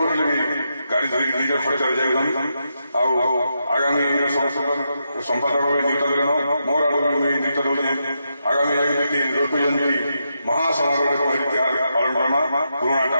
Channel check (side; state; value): both; inverted; correlation -0.84